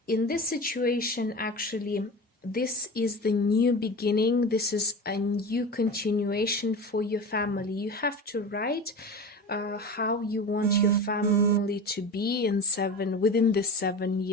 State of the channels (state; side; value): normal; both; correlation 0.30